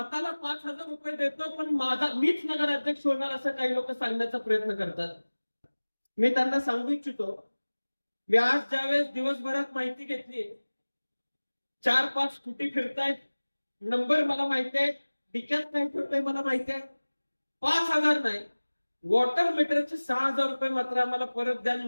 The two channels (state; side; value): inverted; both; correlation -1.00